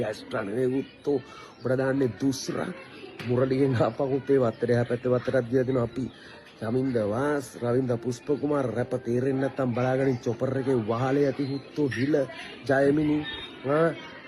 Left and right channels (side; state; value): both; identical; correlation 1.00